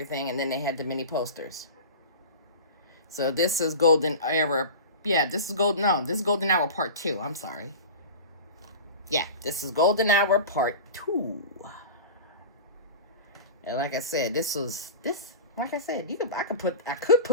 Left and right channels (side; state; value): both; inverted; correlation -0.32